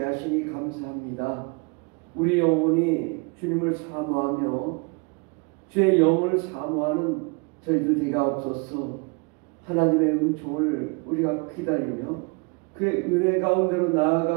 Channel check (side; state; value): left; quieter; 31.9 dB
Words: 하시니 감사합니다. 우리 영혼이 주님을 사모하며 주의 영을 사모하는 저희들 되게 없어서 하나님의 은총을 우리가 기다리며 그의 은혜 가운데로